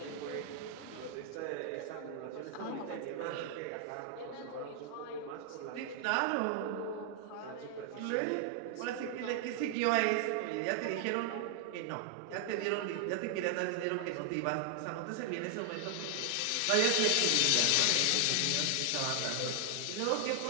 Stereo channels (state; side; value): different; both; correlation 0.00